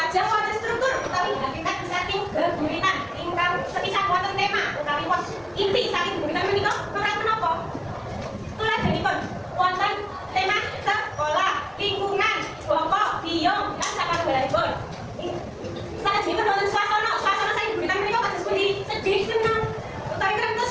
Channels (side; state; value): both; identical; correlation 1.00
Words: wonten struktur utawi hakikat saking geguritan ingkang sepisan wonten tema utawi was inti saking geguritan menika menapa? Tuladhanipun wonten tema sekolah, lingkungan, bapa, biyong lan sakalunggalanipun. Salajengipun wonten swasana saking geguritan menika kados pundi? Sedih, senang, utawi